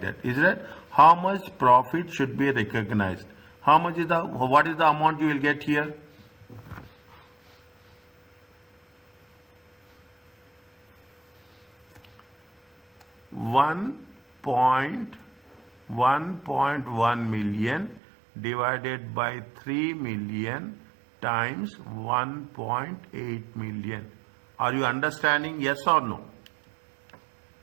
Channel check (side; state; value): left; drops out; at 18.0 s